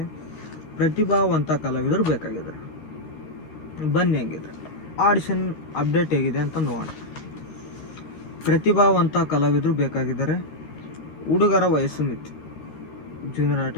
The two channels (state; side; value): late; right; 13 ms